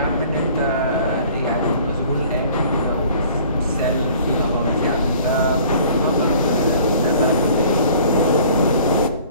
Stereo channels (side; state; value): both; inverted; correlation -0.51